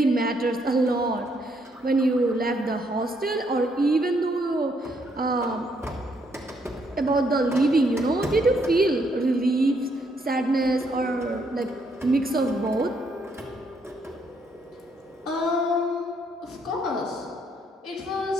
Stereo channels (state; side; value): normal; both; correlation 0.72